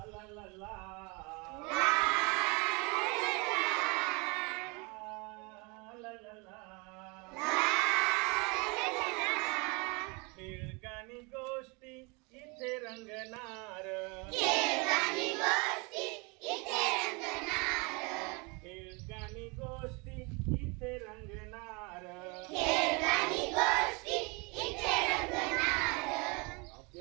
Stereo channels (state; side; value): quieter; left; 29.3 dB